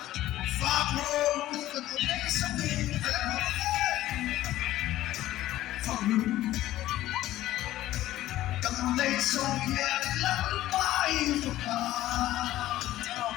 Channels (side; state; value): right; quieter; 14.7 dB